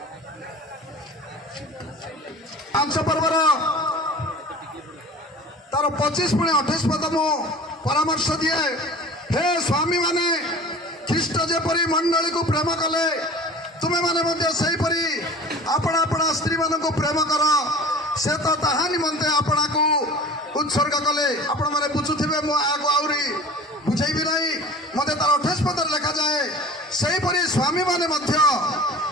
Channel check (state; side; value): normal; both; correlation 0.40